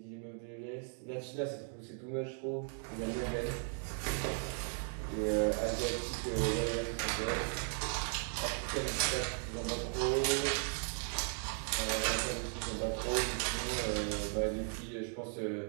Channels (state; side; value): silent; left; 53 dB below the other